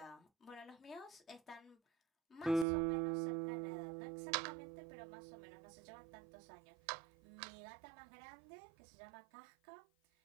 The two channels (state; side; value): drops out; left; at 2.7 s